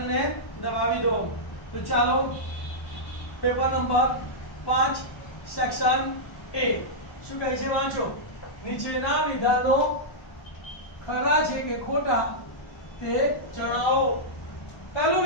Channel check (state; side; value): late; right; 1.1 ms